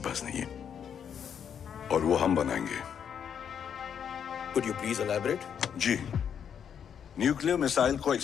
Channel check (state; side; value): quieter; right; 8.0 dB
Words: नहीं है, और वो हम बनाएंगे। Could you please elaborate? जी, न्यूक्लियर मिसाइल को